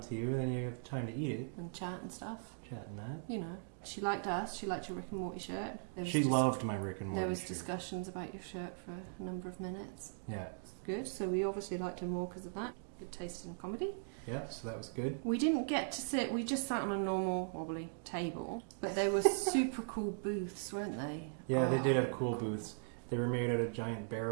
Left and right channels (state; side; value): silent; left; digital silence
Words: you, and then you have time to eat it. And chat and stuff. Chat and that. You know, she liked us. She liked your Rick and Morty shirt. She loved my Rick and Morty shirt. There was discussions about your shirt for a number of minutes. Yeah. It's good. So we obviously liked her more because of that. Good taste in comedy. Yeah, so that was good. We didn't get to sit. We just sat on a normal wobbly table, but they were super cool booths, weren't they? Yeah, they did have cool booths. They were made out of giant